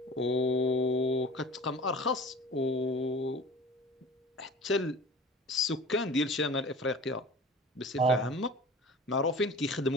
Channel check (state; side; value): normal; both; correlation 0.41